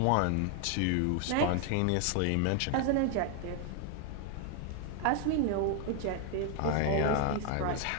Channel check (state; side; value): different; both; correlation 0.00